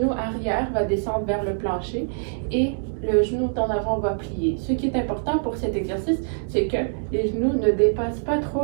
arrière va descendre vers le plancher et le genou en avant va plier. Ce qui est important pour cet exercice, c'est que les genoux ne dépassent pas trop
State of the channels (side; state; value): left; silent; digital silence